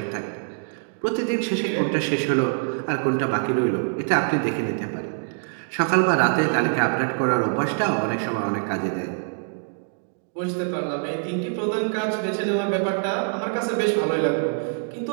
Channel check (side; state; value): left; silent; digital silence